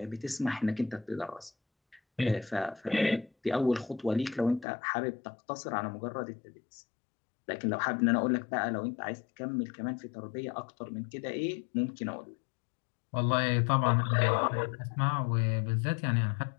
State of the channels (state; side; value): drops out; right; at 4.7 s